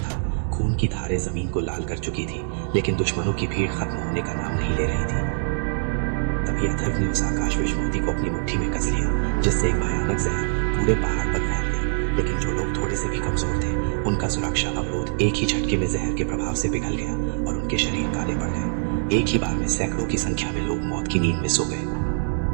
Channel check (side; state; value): left; silent; digital silence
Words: खून की धारें जमीन को लाल कर चुकी थी, लेकिन दुश्मनों की भीड़ खत्म होने का नाम नहीं ले रही थी। तभी अथर्व ने उस आकाश विषमोती को अपनी मुट्ठी में कस लिया, जिससे एक भयानक जहर पूरे पहाड़ पर फैल गई। लेकिन जो लोग थोड़े से भी कमजोर थे, उनका सुरक्षा अवरोध एक ही झटके में जहर के प्रभाव से पिघल गया और उनके शरीर काले पड़ गए। एक ही बार में सैकड़ों की संख्या में लोग मौत की नींद में सो